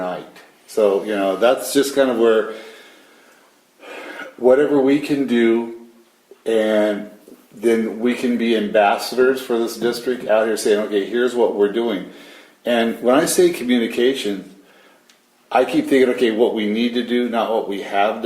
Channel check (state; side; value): identical; both; correlation 1.00